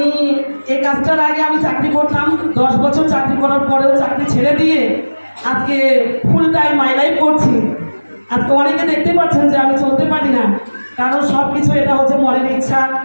এই কাজটার আগে আমি চাকরি করতাম, 10 বছর চাকরি করার পরেও চাকরি ছেড়ে দিয়ে আজকে ফুল টাইম মাই লাইফ করছি। আজকে অনেকে দেখতে পাচ্ছেন যে আমি চলতে পারি না, কারণ সব কিছু এটা হচ্ছে মনের ইচ্ছা,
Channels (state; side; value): inverted; both; correlation -1.00